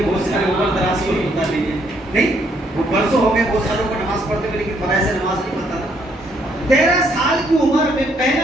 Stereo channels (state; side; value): normal; both; correlation 0.70